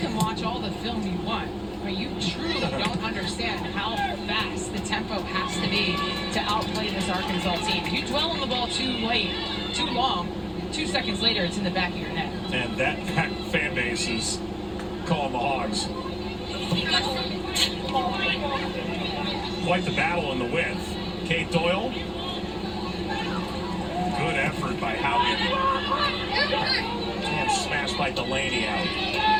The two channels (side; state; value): both; identical; correlation 1.00